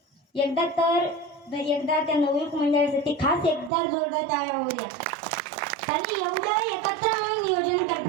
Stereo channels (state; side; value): drops out; left; at 3.7 s